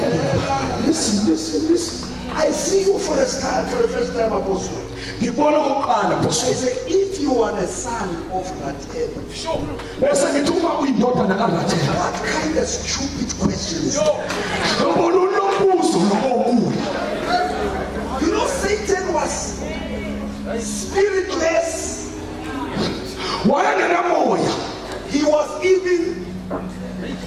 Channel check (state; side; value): identical; both; correlation 1.00